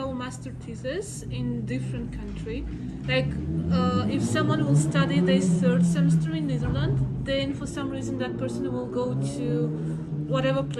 master thesis in different country. Like if someone will study their third semester in Netherlands, then for some reason that person will go to whatever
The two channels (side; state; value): both; identical; correlation 1.00